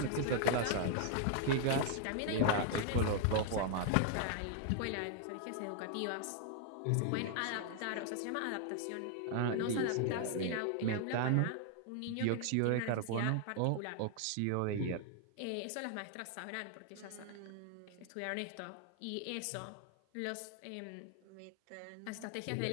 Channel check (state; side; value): different; both; correlation 0.00